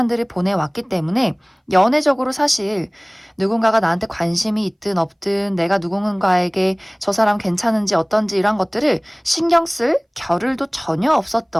보내왔기 때문에 연애적으로 사실 누군가가 나한테 관심이 있든 없든 내가 누군가에게 저 사람 괜찮은지 어떤지 이런 것들을 신경 쓸 겨를도 전혀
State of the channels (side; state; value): both; identical; correlation 1.00